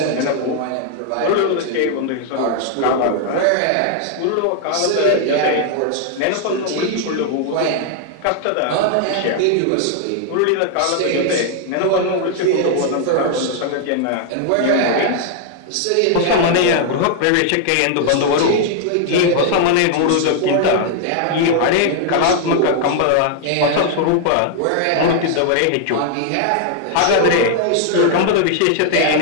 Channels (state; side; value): different; both; correlation 0.00